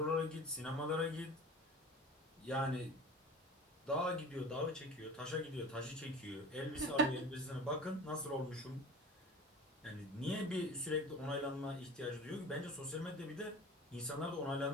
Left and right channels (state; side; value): normal; both; correlation 0.38